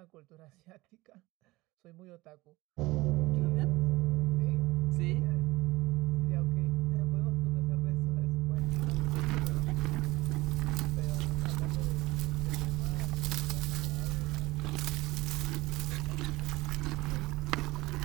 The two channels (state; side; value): quieter; left; 20.2 dB